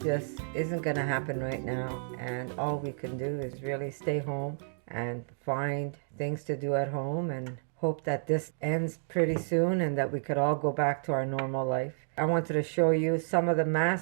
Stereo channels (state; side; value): silent; left; digital silence